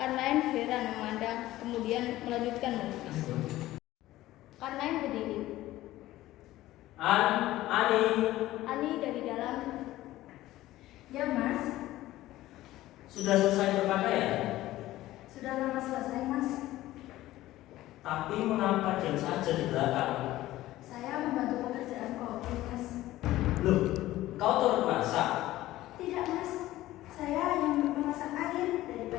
heran memandang, kemudian melanjutkan melukis. Karnain berdiri. Ani. Ani dari dalam. Ya mas, Sudah selesai berpakaian? sudah lama selesai mas. Tapi mengapa diam saja di belakang? Saya membantu pekerjaan kopi mas. Loh, kau turut masak? Tidak mas, saya yang memasak air.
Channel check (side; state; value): right; quieter; 15.8 dB